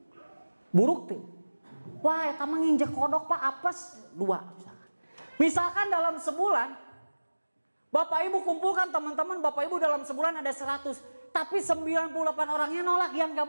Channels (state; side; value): inverted; both; correlation -1.00